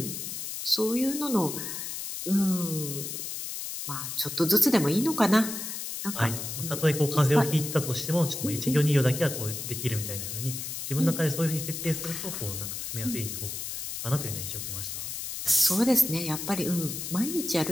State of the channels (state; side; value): noise; left; hiss, 6 dB below the sound